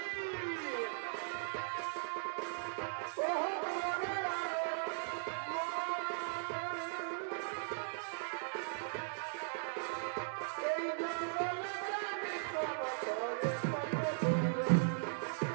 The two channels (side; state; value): left; silent; 52 dB below the other